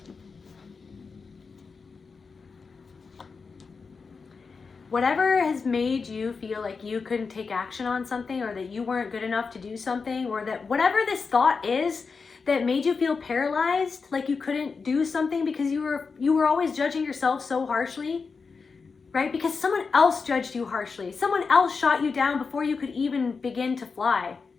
whatever has made you feel like you couldn't take action on something, or that you weren't good enough to do something, or that whatever this thought is that made you feel paralyzed, like you couldn't do something because you were always judging yourself so harshly, right? Because someone else judged you harshly. Someone else shot you down before you could even begin to fly.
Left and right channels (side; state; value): right; quieter; 4.9 dB